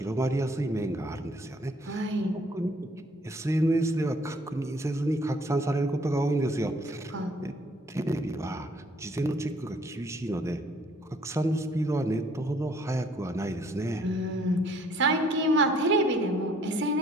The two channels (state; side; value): normal; both; correlation 0.62